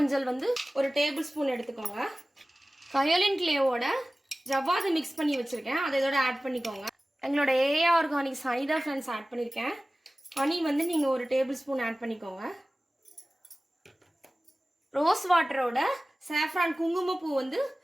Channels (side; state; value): both; normal; correlation 0.97